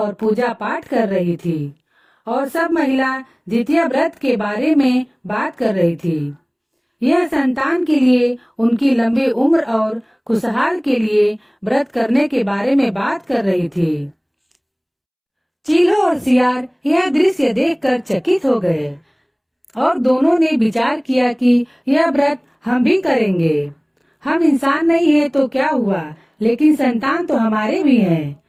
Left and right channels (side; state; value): both; identical; correlation 1.00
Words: पूजा पाठ कर रही थी और सब महिला जितिया व्रत के बारे में बात कर रही थी। यह संतान के लिए, उनकी लंबी उम्र और खुशहाल के लिए व्रत करने के बारे में बात कर रही थी। चीलो और सियार यह दृश्य देखकर चकित हो गए और दोनों ने विचार किया कि यह व्रत हम भी करेंगे। हम इंसान नहीं है तो क्या हुआ, लेकिन संतान तो हमारे भी हैं।